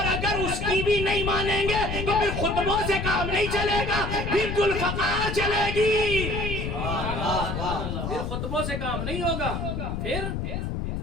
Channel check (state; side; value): noise; left; rumble, 3 dB below the sound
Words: اگر اس کی بھی نہیں مانیں گے تو پھر خطبوں سے کام نہیں چلے گا، پھر ذوالفقار چلے گی. پھر خطبوں سے کام نہیں ہوگا، پھر